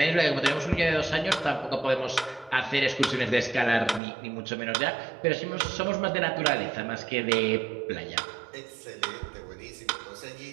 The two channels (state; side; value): drops out; left; at 4.0 s